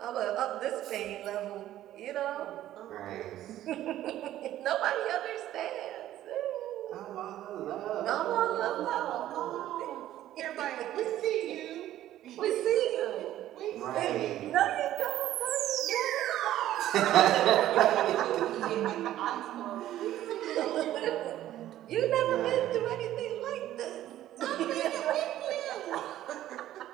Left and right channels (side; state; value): left; quieter; 13.2 dB